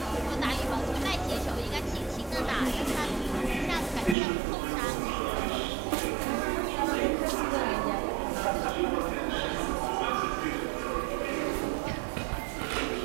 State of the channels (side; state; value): left; drops out; at 4.2 s